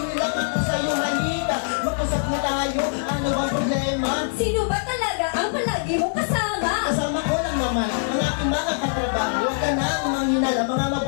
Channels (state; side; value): silent; right; digital silence